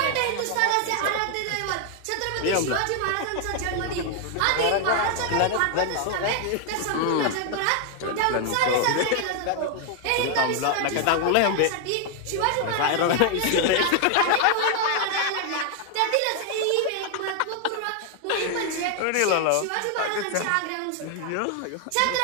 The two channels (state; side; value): different; both; correlation 0.00